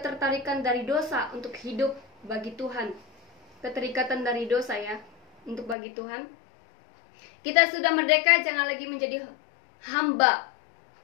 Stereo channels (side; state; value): right; drops out; at 5.8 s